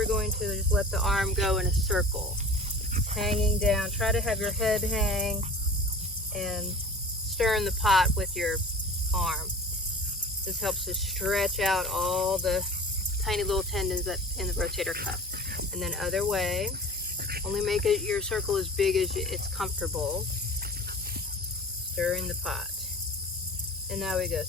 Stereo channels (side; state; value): both; normal; correlation 0.40